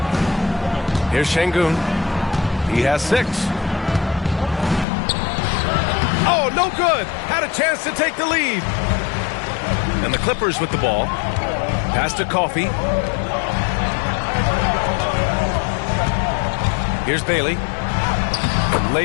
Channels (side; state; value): right; drops out; at 4.9 s